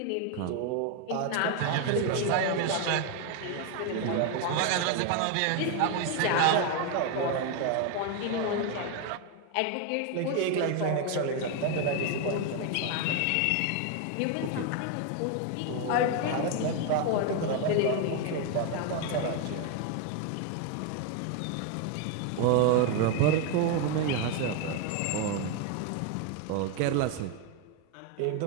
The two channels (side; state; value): both; different; correlation 0.01